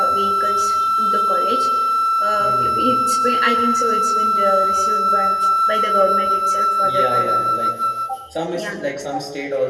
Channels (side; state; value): both; identical; correlation 1.00